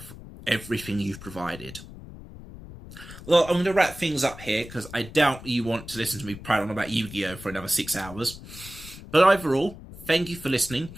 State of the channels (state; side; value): noise; left; rumble, 15 dB below the sound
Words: everything you've provided. Well, I'm going to wrap things up here because I doubt you want to listen to me prattle on about Yu-Gi-Oh! For another 6 hours. But overall, thank you for listening.